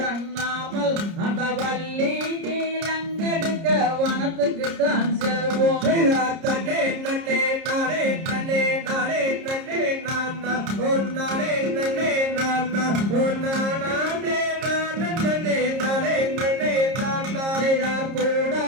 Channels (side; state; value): left; late; 30 ms